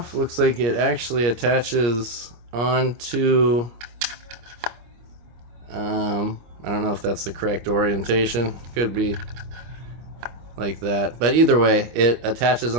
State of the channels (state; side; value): late; left; 25 ms